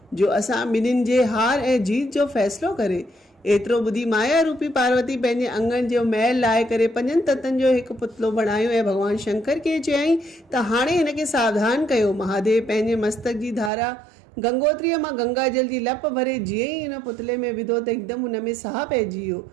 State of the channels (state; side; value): drops out; left; at 13.7 s